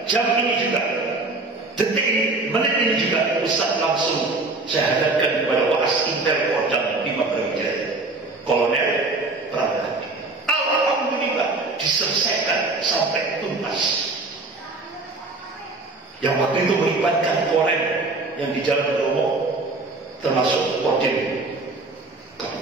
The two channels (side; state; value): left; quieter; 3.3 dB